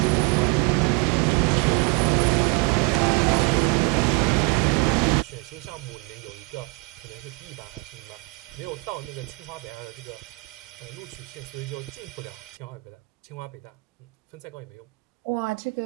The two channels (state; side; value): quieter; left; 27.5 dB